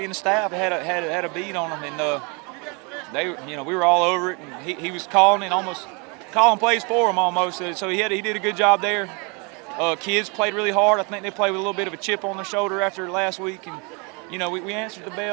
and the staff had a beat on them, and we were all over it. And he was calling plays for them almost. So he did a good job there. Kids played really hard. I think they played with a little bit of a chip on their shoulder after last week, and we answered the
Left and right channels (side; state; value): left; quieter; 31.8 dB